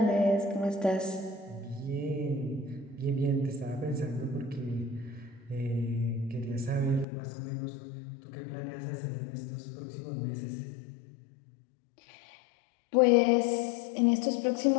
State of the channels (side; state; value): right; drops out; at 7.1 s